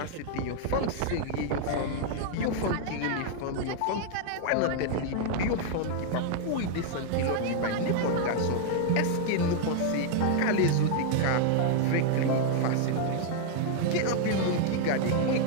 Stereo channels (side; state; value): both; different; correlation 0.00